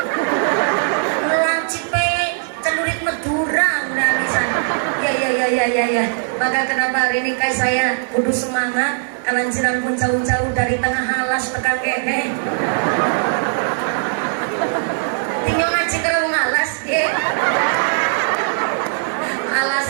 Lancipe celurit Madura udah misalnya. Ya. Maka kenapa hari ini kayak saya kudu semangat? Kalanjiran pun jauh-jauh dari tengah halas tekan kene. Tinggal ngaji karo ngalas nggih.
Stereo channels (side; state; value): left; silent; digital silence